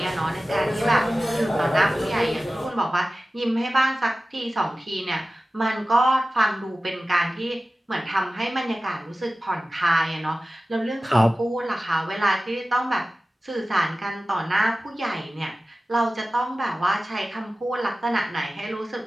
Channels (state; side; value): normal; both; correlation 0.96